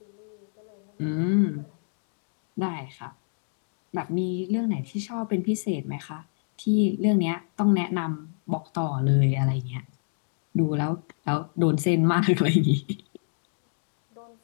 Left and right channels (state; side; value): silent; right; digital silence